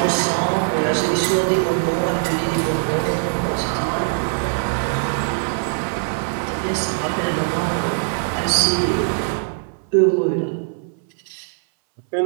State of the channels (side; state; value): left; silent; 63 dB below the other